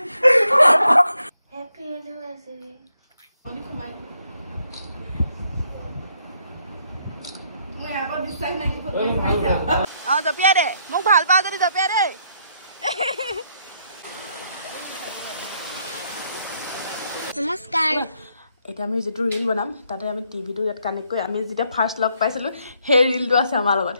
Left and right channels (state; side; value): inverted; both; correlation -0.73